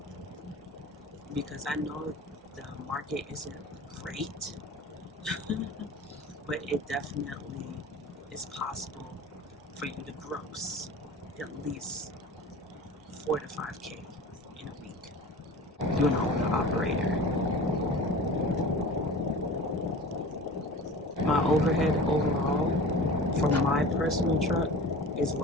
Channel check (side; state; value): both; normal; correlation 0.37